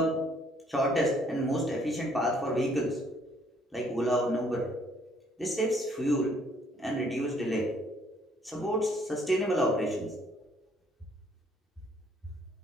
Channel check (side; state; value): both; normal; correlation 0.64